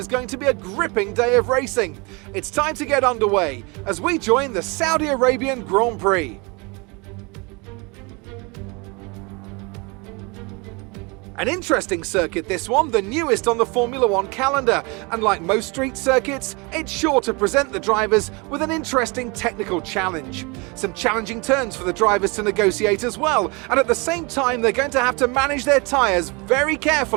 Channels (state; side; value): quieter; left; 28.5 dB